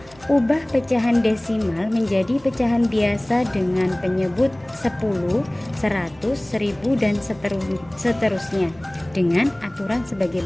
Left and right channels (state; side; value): noise; right; hum, 25 dB below the sound